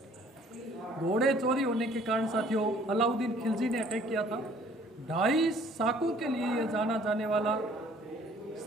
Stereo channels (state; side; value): normal; both; correlation 0.57